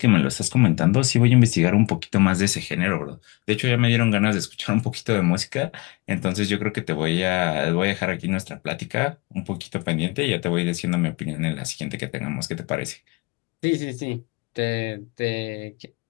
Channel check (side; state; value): right; quieter; 25.9 dB